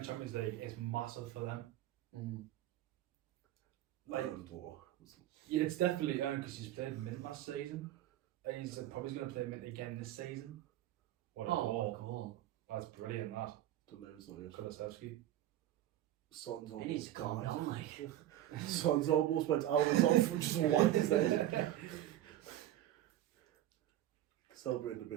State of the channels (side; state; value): left; quieter; 13.1 dB